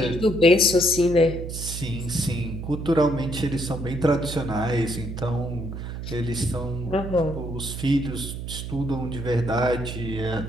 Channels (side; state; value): right; noise; hum, 7 dB below the sound